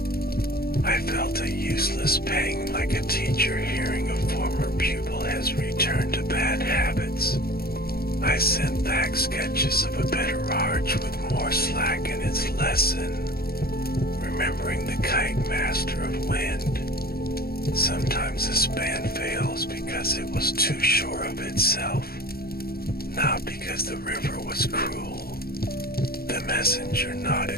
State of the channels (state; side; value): late; right; 0.44 ms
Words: I felt a useless pang like a teacher hearing a former pupil has returned to bad habits. I sent back sketches of a better arch with more slack in its lesson, remembering the kite master of wind. Sometimes a span fails because it was too sure of itself, not because the river was cruel. The messenger